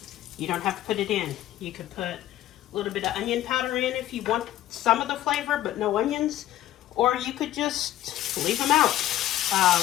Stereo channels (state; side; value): quieter; right; 13.6 dB